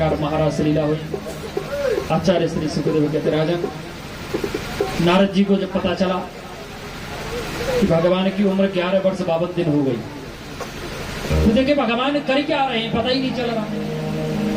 महाराज से लीला हुई। आचार्य श्री सुखदेव कहते राजन, नारद जी को जब पता चला कि भगवान की उम्र 11 वर्ष 52 दिन हो गई, तो देखे भगवान कर क्या रहे हैं पता ही नहीं चल रहा।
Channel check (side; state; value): both; identical; correlation 1.00